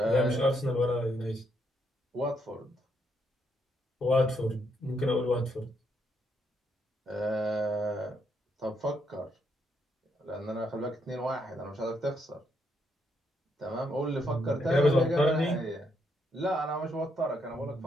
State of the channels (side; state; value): both; normal; correlation 0.76